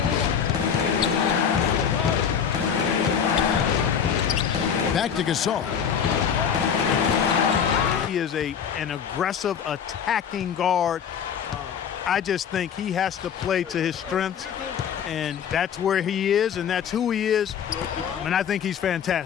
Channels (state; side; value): quieter; right; 7.7 dB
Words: Back to Gasol. He is an aggressive attacking guard. I just think he has to play to his strengths, and that's where he is, and that's who he is. And I think he's